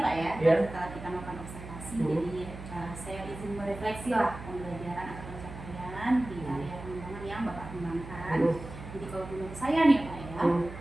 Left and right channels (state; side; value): noise; right; hum, 12 dB below the sound